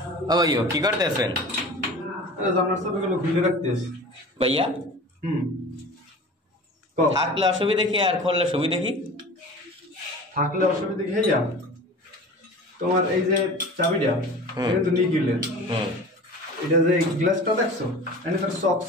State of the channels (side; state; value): both; normal; correlation 0.38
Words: ও ভাইও কি করতেছেন? জানার সবগুলো খুলে রাখতেছি ভাইয়া হুম থাকলে অসুবিধা কি আর খুললে সুবিধা কি? থাকলে অসুবিধা কি হইয়া তোমার এই যে চাবিটা এটা তো নিয়ে গেলেন এটা যে গ্লাসটা দেখছো এখানে